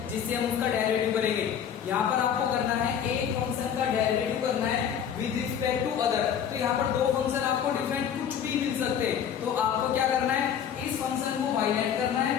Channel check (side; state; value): right; quieter; 8.5 dB